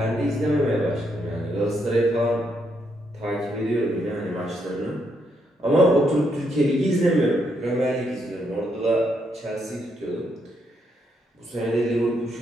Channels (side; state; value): both; normal; correlation 0.77